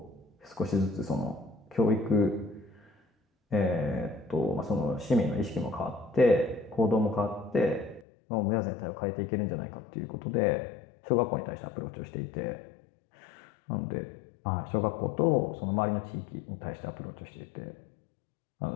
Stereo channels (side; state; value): right; drops out; at 8.1 s